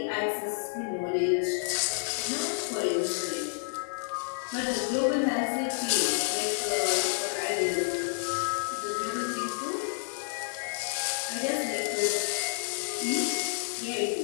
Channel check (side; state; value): right; silent; digital silence